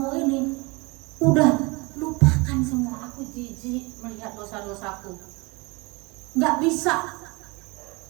ini, udah lupakan semua, aku jijik melihat dosa-dosaku, nggak bisa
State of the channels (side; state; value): left; quieter; 26.5 dB